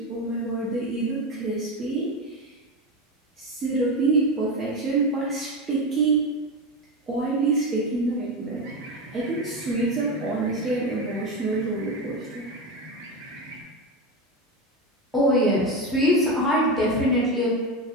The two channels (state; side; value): normal; both; correlation 0.17